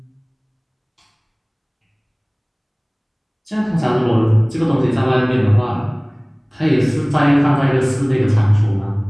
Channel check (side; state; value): both; identical; correlation 1.00